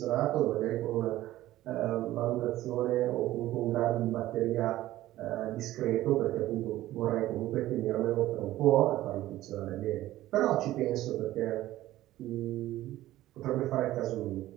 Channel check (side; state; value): left; quieter; 15.2 dB